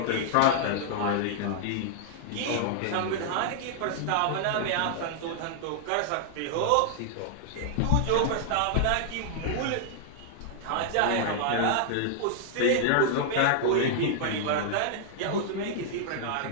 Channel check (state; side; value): different; both; correlation -0.01